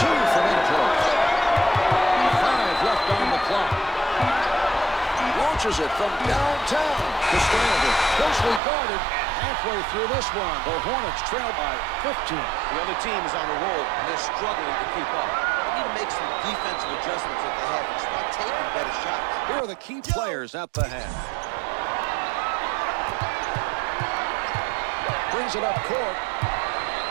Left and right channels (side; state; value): left; drops out; at 8.6 s